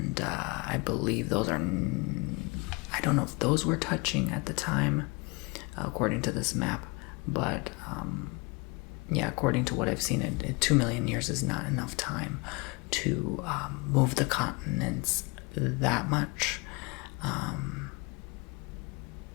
I believe those are, I don't know if those were touching at the time, according to this map, but yeah, according to what I've seen, 2 million years is not enough time to move the continents that much.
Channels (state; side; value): quieter; right; 28.6 dB